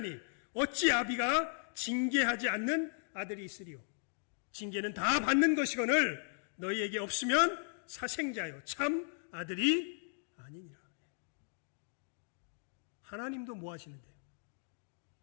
어찌 아비가 징계하지 않는 아들이 있으리요. 징계는 다 받는 것이거늘 너희에게 없으면 사생자요 참 아들이 아니니라. 하나님도 뭐 하시는데요?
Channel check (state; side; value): silent; right; digital silence